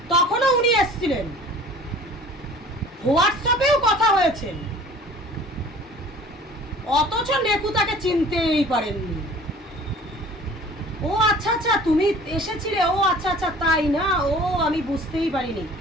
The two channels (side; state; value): both; normal; correlation 0.47